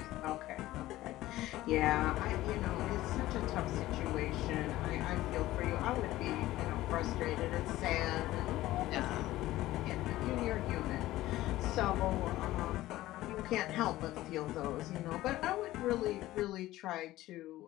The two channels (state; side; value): quieter; right; 16.1 dB